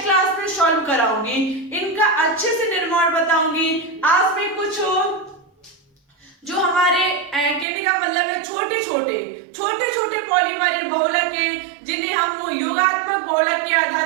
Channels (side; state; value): left; drops out; at 7.7 s